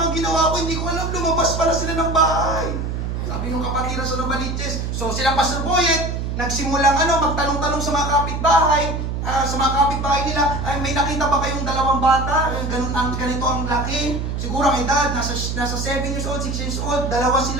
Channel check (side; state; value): right; noise; hum, 3 dB below the sound